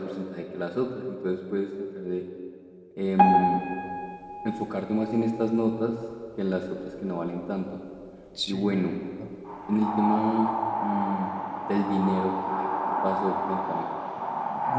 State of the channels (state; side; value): identical; both; correlation 1.00